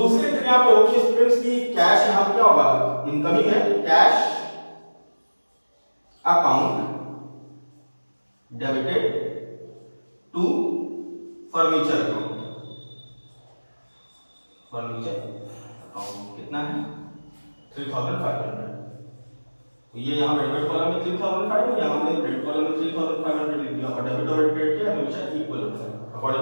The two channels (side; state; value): both; inverted; correlation -1.00